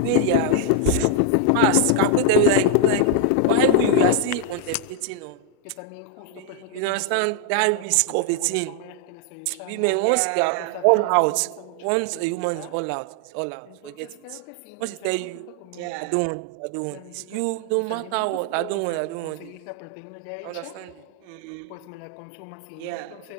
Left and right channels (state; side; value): different; both; correlation 0.00